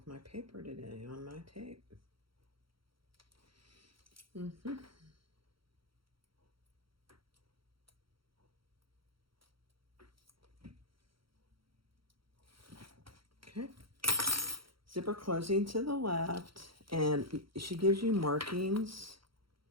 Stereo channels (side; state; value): left; late; 0.74 ms